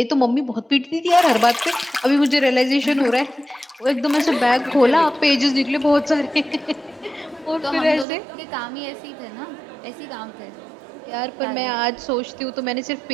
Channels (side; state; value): left; drops out; at 8.1 s